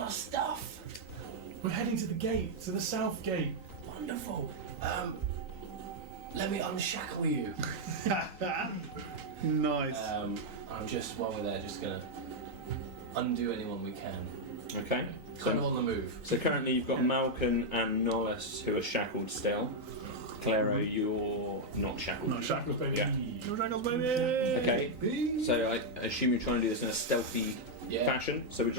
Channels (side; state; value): left; late; 3.9 ms